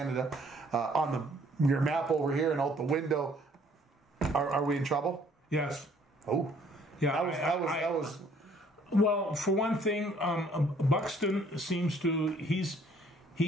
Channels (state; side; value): normal; both; correlation 0.61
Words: on your map over here and out the window. Are we in trouble? Yes. Oh, yeah. That was. Well, for one thing, Buxton seems to he's